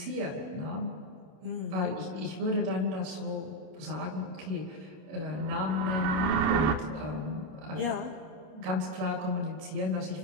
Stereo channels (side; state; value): left; late; 32 ms